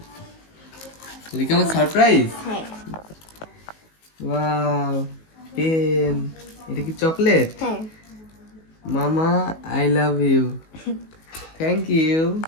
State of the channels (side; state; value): right; late; 19 ms